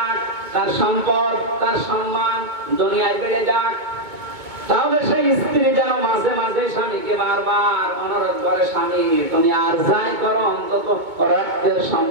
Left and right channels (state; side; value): late; left; 2.2 ms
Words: তার সম্পদ, তার সম্মান দুনিয়ায় বেড়ে যাক, তাহলে সেই স্ত্রী যেন মাঝে মাঝে স্বামীকে বারবার অনুরোধ করে, স্বামী তুমি আর যাই করো অন্তত রক্তের